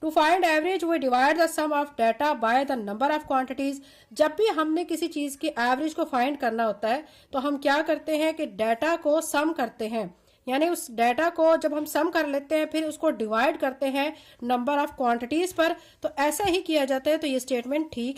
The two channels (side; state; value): both; identical; correlation 1.00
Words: to find average we divide the sum of data by the number of quantities. जब भी हमने किसी चीज की एवरेज को फाइंड करना होता है तो हम क्या करते हैं कि डाटा को सम करते हैं, यानी उस डाटा को जब हम सम कर लेते हैं फिर उसको डिवाइड करते हैं नंबर ऑफ क्वांटिटीज पर। तो ऐसा ही किया जाता है। तो ये स्टेटमेंट